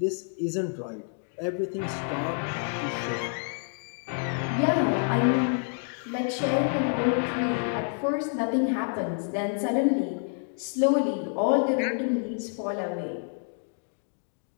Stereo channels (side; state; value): right; silent; 59 dB below the other